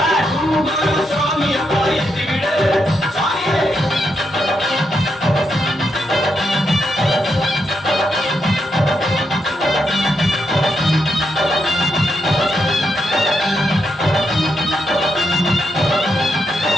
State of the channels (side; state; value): both; normal; correlation 0.81